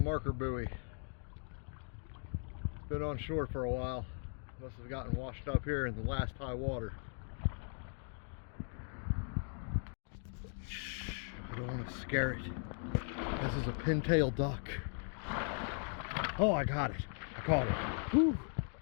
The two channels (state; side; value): silent; right; 52 dB below the other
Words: buoy. Been on shore for a while. Must have gotten washed up here in the last high water. I don't want to scare it. This is a pintail duck. Oh, I got it. I caught it. Whew.